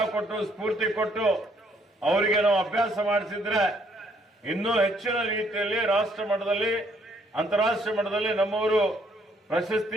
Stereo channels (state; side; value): normal; both; correlation 0.67